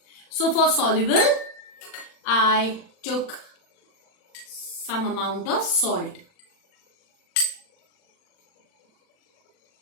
So, for soluble, I took some amount of salt.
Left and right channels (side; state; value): right; late; 40 ms